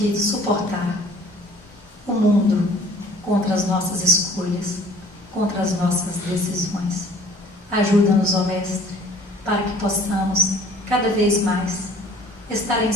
suportar o mundo contra as nossas escolhas, contra as nossas decisões. Ajuda-nos, ó Mestre, para que possamos cada vez mais estar em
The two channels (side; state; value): both; normal; correlation 0.52